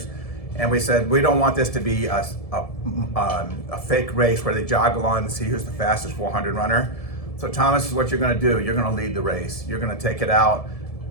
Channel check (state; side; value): late; right; 1.7 ms